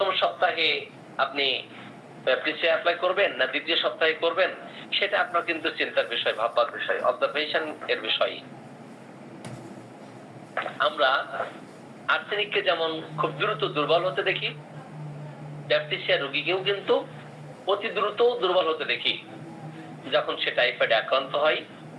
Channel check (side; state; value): both; identical; correlation 1.00